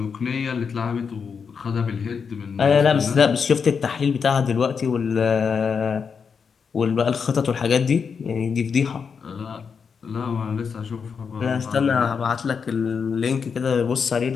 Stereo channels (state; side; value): quieter; right; 6.1 dB